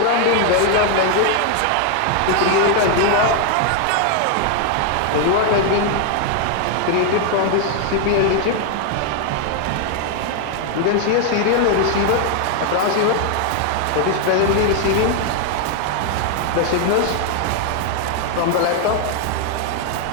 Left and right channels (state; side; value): different; both; correlation 0.01